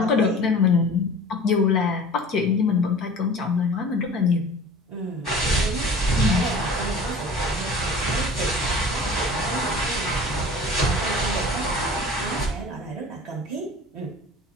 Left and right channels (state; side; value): normal; both; correlation 0.42